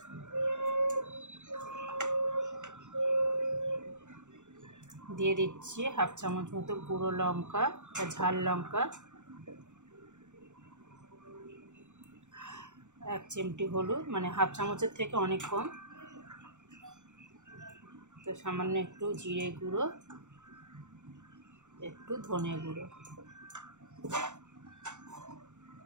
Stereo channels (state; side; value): late; left; 0.84 ms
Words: দিয়ে দিচ্ছি হাফ চামচ মতো গুঁড়ো লঙ্কা বা ঝাল লঙ্কা, 1 চিমটি হলুদ, মানে হাফ চামচের থেকে অনেক কম। তো সামান্য একটু জিরে গুঁড়ো, একটু ধনে গুঁড়ো,